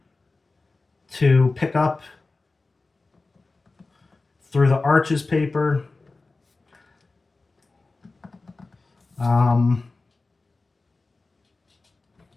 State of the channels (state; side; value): quieter; right; 3.5 dB